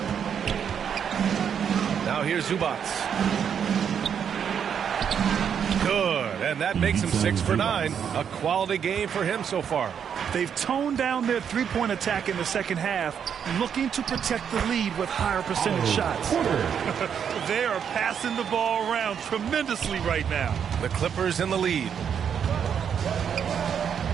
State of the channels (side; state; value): left; quieter; 7.9 dB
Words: Now here's Zubac. Good, and that makes him 6 for 9. A quality game for him so far. They've toned down their three-point attack in the second half, looking to protect the lead with higher percentage shots. They are passing the ball around tremendously right now. The Clippers in the lead.